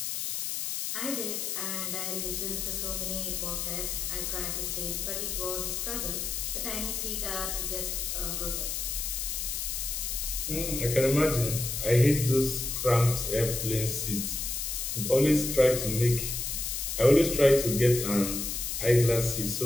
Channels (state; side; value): noise; left; hiss, 3 dB below the sound